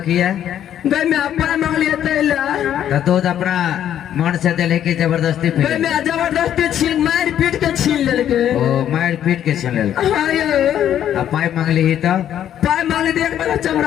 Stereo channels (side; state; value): right; quieter; 10.5 dB